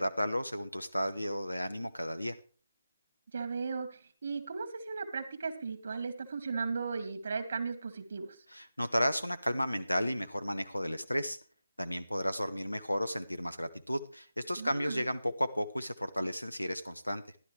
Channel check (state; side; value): inverted; both; correlation -0.93